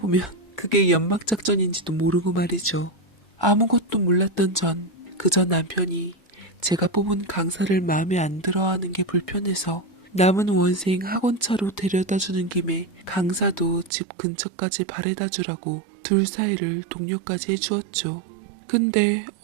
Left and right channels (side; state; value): left; drops out; at 13.9 s